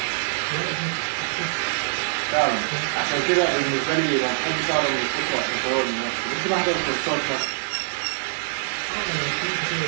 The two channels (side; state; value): left; silent; 60 dB below the other